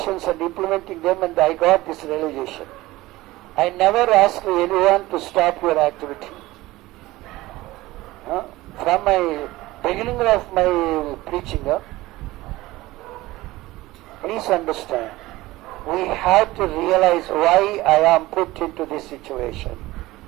and implementing them, and I got this realization. I never ask anyone to stop your activity. From my beginning of my preaching, please understand, we have to realize why I am put into this situation.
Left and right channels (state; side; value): quieter; left; 18.5 dB